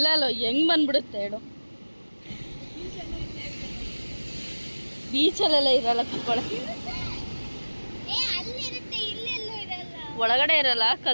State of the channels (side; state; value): both; inverted; correlation -1.00